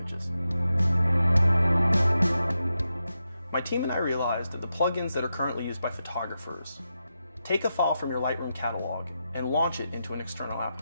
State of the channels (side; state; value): both; inverted; correlation -0.88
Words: My team and I realized that the plugins that are currently used by photographers take a file from your Lightroom catalog and launch it into an external